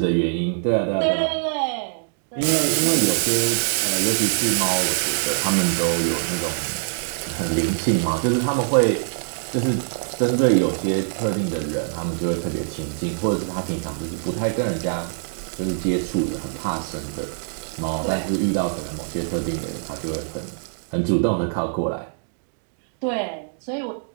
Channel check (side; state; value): left; silent; digital silence